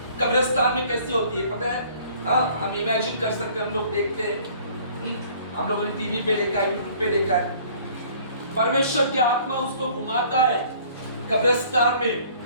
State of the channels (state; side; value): inverted; both; correlation -0.54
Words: कब्रिस्तान में कैसी होती है पता है? हाँ, हम इमेजिन कर सकते हैं, हम लोग देखते हैं, हम लोगों ने टीवी पे देखा है, यूट्यूब पे देखा है। परमेश्वर की आत्मा उसको घुमाता है कब्रिस्तान में,